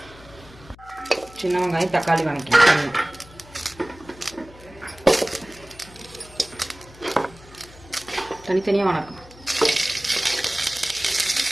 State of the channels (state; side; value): noise; left; hum, 21 dB below the sound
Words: சின்ன வெங்காயம், தக்காளி வதக்கிக்கணும். தனித்தனியாக வணக்கம்.